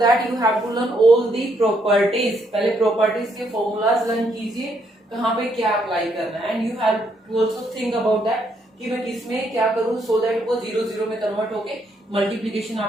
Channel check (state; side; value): normal; both; correlation 0.73